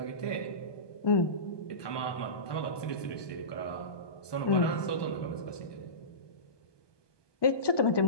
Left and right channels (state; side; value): late; right; 1.2 ms